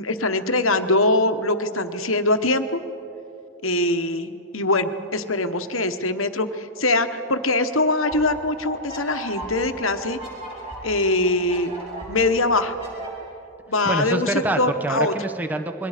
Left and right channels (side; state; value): both; normal; correlation -0.14